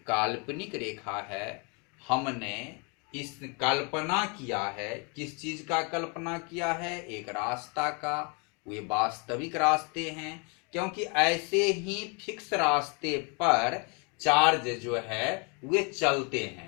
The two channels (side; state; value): right; quieter; 33.5 dB